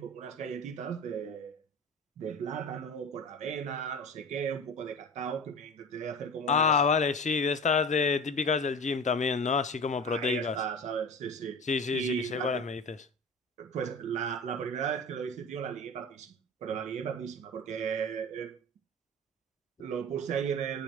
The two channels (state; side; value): normal; both; correlation 0.34